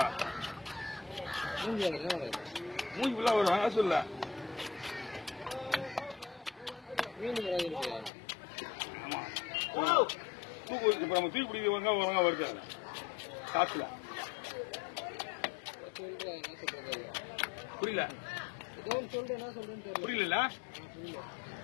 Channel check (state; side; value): drops out; right; at 8.1 s